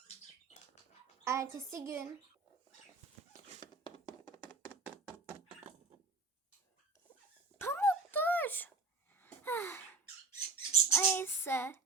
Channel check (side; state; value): left; quieter; 3.8 dB